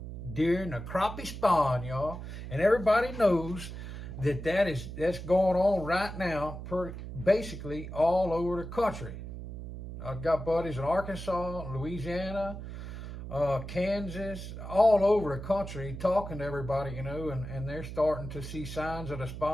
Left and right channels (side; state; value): right; noise; hum, 9 dB below the sound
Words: during the crappie spawn, y'all. And everybody knows that's going on right now, basically all over the country. I've got buddies in Arkansas, Louisiana, Kansas, all over the country talking to everybody, and they're starting to see signs of the